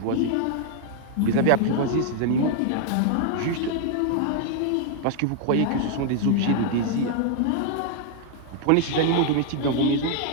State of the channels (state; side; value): different; both; correlation 0.00